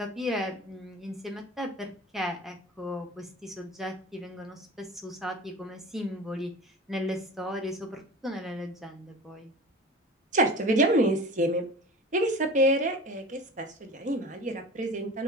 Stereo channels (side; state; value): both; normal; correlation 0.36